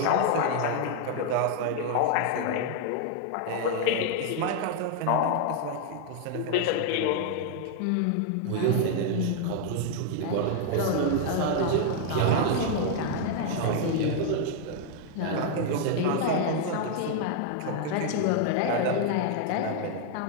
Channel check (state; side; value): different; both; correlation 0.00